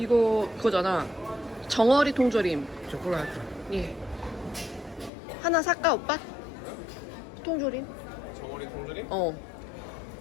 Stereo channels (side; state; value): right; drops out; at 5.1 s